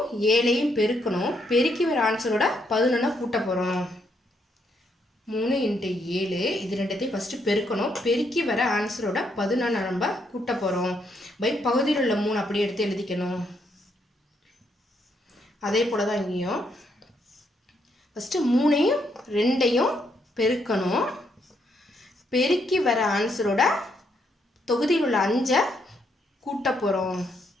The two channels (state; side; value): normal; both; correlation 0.75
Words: 7ஐயும் பெருக்கணும், பெருக்கி வர ஆன்சரோட 11 கூட்ட போகிறோம். 3 × 7 இது ரெண்டுத்தையும் ஃபஸ்ட்டு பெருக்கணும், பெருக்கி வர ஆன்சரோட 11 நம்ம கூட்ட போகிறோம். பகுதியில் உள்ள 3 அப்படியே எடுத்து எழுதிக்கணும். அதே போல் தான் இங்கேயும் ஃபஸ்ட்டு 3ஐயும் 2ஐயும் பெருக்கணும், பெருக்கி வர ஆன்சரோட தொகுதியில் உள்ள 5 கூட்ட போகிறோம்.